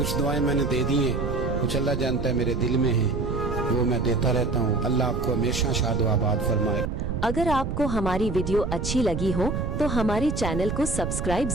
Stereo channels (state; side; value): noise; right; rumble, 3 dB below the sound